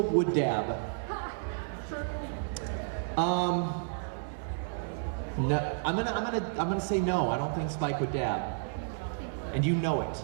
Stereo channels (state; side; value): silent; left; digital silence